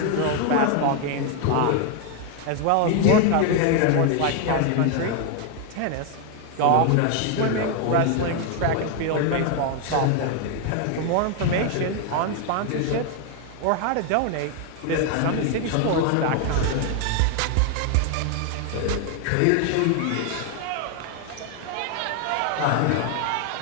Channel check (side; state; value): both; different; correlation 0.01